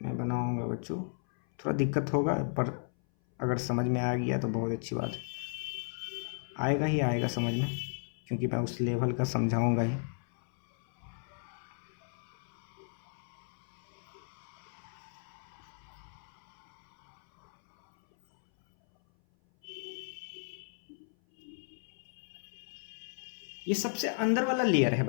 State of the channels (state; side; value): silent; right; 55 dB below the other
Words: बनाऊंगा बच्चों, थोड़ा दिक्कत होगा पर अगर समझ में आ गया तो बहुत अच्छी बात है। आएगा ही आएगा समझ में, क्योंकि मैं उस लेवल का समझाऊंगा ही। ये सबसे अंदर वाला लेयर है